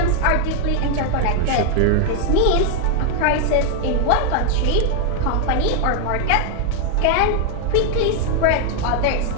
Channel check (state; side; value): different; both; correlation 0.00